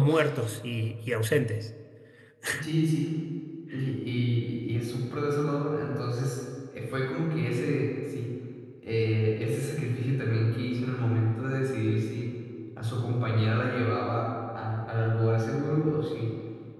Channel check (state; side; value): identical; both; correlation 1.00